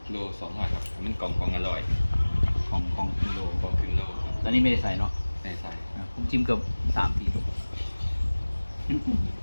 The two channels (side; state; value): both; inverted; correlation -1.00